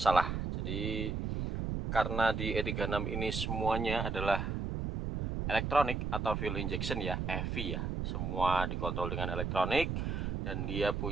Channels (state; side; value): noise; right; rumble, 2 dB below the sound